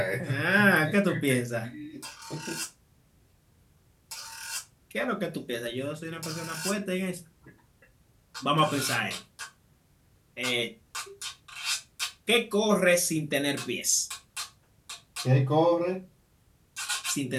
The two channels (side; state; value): both; identical; correlation 1.00